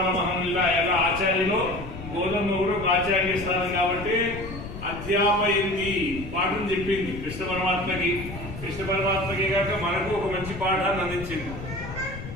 మహనుల ఎలా ఆచార్యులు, గోధుమ కూడా ఒక ఆచార్య స్థానం కాబట్టి అధ్యాపయింది, పాఠం చెప్పింది కృష్ణ పరమాత్మకి. కృష్ణ పరమాత్మకి కాక మనకు ఒక మంచి పాఠాన్ని అందించింది.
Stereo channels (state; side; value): noise; left; rumble, 10 dB below the sound